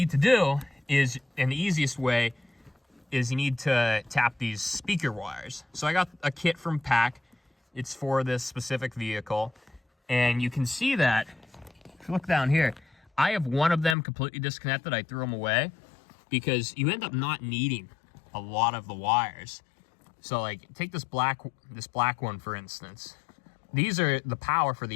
to do is, and the easiest way, is you need to tap these speaker wires. So I got a kit from PAC. It's for this specific vehicle. And you can see that, if you look down here, I have one of them completely disconnected. I threw them away because you end up not needing a lot of the wires. So like, take this black one, for instance. These are the power for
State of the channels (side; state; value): right; drops out; at 14.0 s